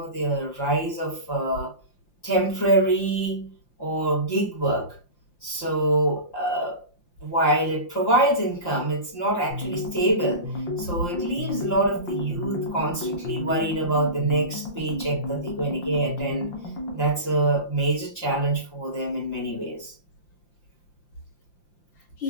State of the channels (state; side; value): late; right; 5.8 ms